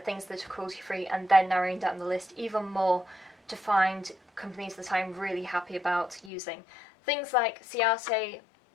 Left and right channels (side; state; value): right; drops out; at 6.3 s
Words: things that are cruelty-free and then narrowing down the list even more to find companies that I'm really happy about using. Things like Ciate,